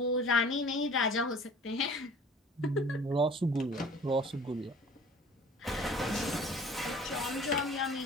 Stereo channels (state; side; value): normal; both; correlation 0.47